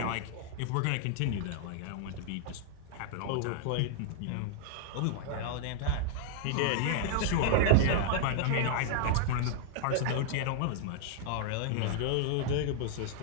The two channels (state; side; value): different; both; correlation 0.00